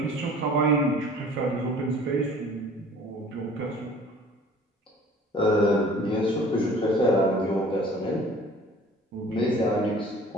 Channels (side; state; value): both; normal; correlation 0.49